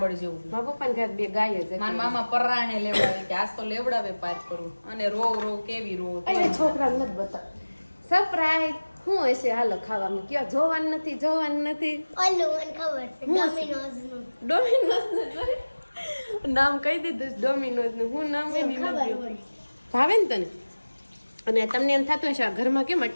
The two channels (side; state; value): both; inverted; correlation -1.00